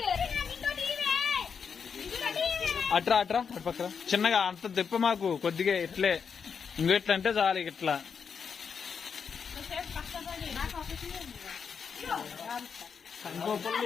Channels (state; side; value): quieter; right; 6.4 dB